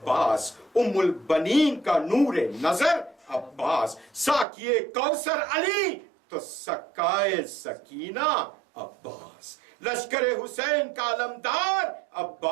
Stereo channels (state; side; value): drops out; left; at 4.5 s